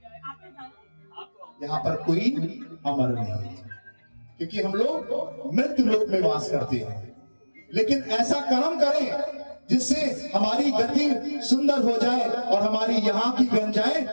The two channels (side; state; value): both; inverted; correlation -1.00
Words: यहाँ पर कोई अमर नहीं है क्योंकि हम लोग मृत्यु लोक में वास करते हैं। लेकिन ऐसा कर्म करें जिससे हमारी गति सुंदर हो जाए और हमारी यहाँ की बन